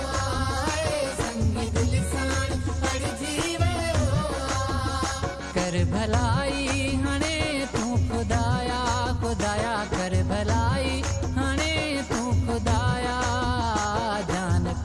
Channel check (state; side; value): identical; both; correlation 1.00